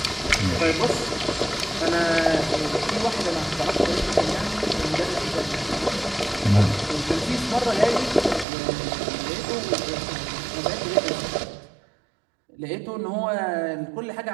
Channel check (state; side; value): drops out; left; at 8.5 s